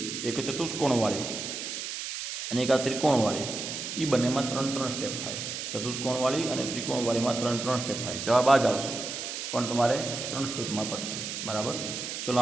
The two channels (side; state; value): right; noise; hiss, 5 dB below the sound